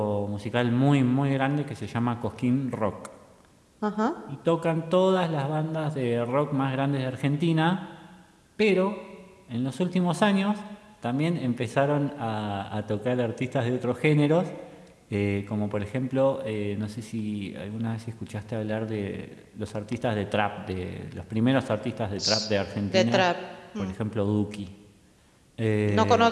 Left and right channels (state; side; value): identical; both; correlation 1.00